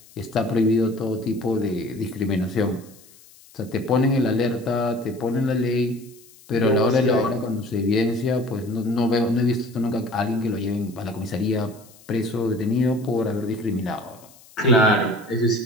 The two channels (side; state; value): left; noise; hiss, 25 dB below the sound